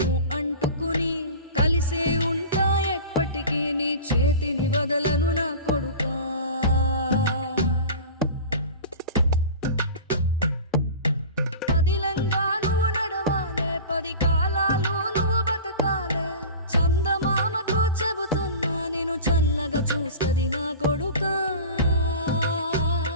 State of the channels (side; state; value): both; inverted; correlation -0.35